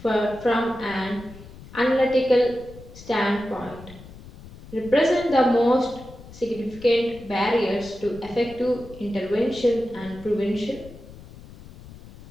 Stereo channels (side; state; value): left; noise; rumble, 18 dB below the sound